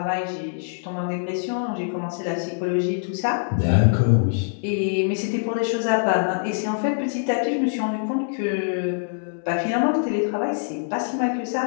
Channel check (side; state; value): right; silent; digital silence